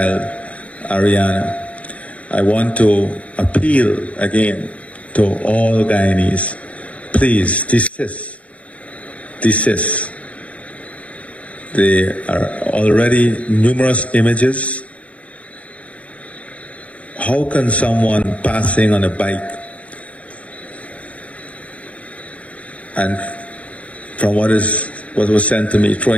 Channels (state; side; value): late; right; 0.065 ms